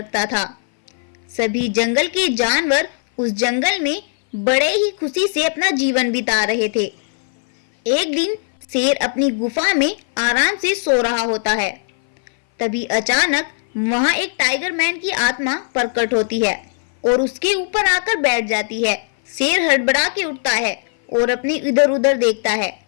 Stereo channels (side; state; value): right; silent; 59 dB below the other